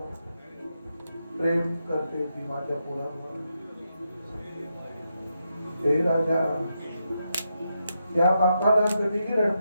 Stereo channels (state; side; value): inverted; both; correlation -0.84